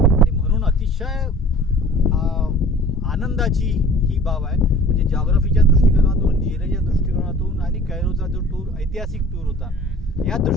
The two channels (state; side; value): normal; both; correlation 0.47